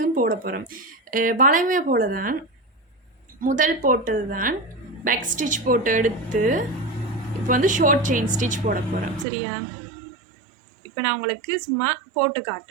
போட போகிறோம். வளைமை போல தான் முதல் போட்டது தான் பேக் ஸ்டிச் போட்டு எடுத்து இப்போ வந்து ஷார்ட் செயின் ஸ்டிச் போட போகிறோம். சரியா? இப்போ நான் உங்களுக்கு சும்மா போட்டு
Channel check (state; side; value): drops out; left; at 9.2 s